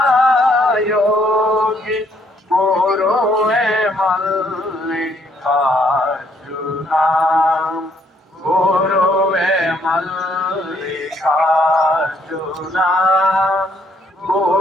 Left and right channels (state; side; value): normal; both; correlation 0.68